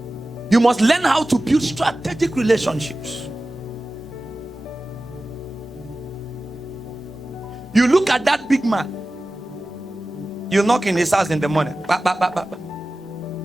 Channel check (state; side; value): normal; both; correlation 0.96